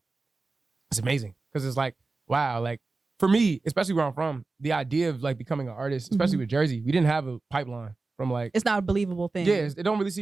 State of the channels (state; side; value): quieter; left; 3.7 dB